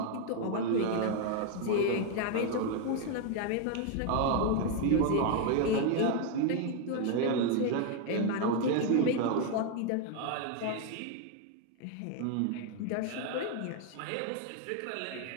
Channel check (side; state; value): both; different; correlation 0.01